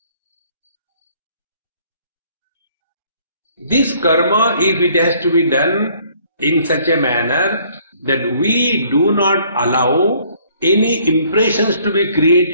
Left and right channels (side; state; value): both; inverted; correlation -0.61